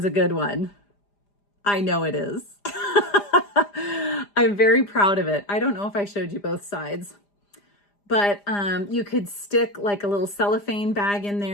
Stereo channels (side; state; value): right; late; 5.0 ms